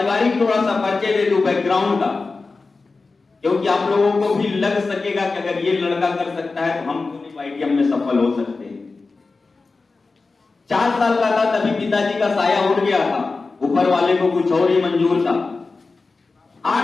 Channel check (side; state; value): right; quieter; 3.9 dB